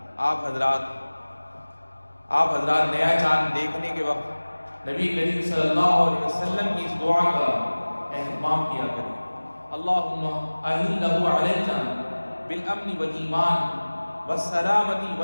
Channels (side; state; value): both; inverted; correlation -1.00